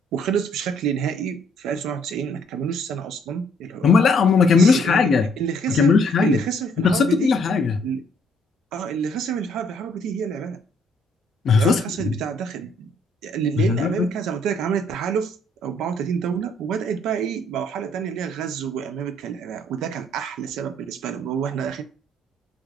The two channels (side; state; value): both; normal; correlation 0.65